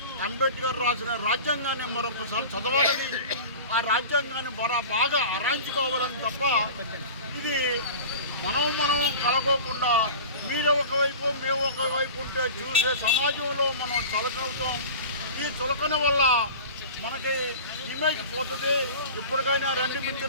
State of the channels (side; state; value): both; inverted; correlation -0.37